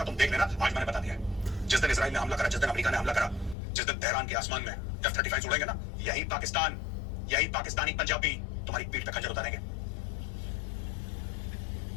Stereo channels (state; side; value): drops out; right; at 3.6 s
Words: तुम देख लेना। आज मैंने बता दिया है, जिस दिन इजराइल ने हमला करा, जिस दिन अमेरिका ने हमला करा, जिस दिन तेहरान के आसमान में F-35 उड़ेंगे ना, यही पाकिस्तानी पंजाबी तुम्हारी पीठ पे खंजर उतारेंगे।